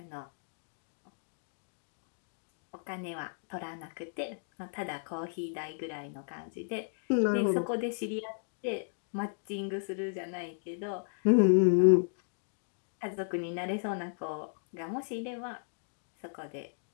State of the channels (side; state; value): right; silent; digital silence